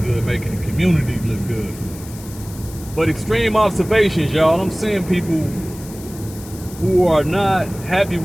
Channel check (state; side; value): noise; left; hiss, 18 dB below the sound